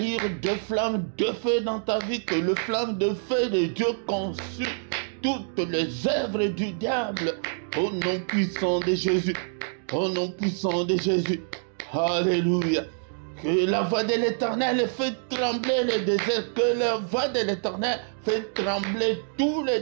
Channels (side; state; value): left; silent; digital silence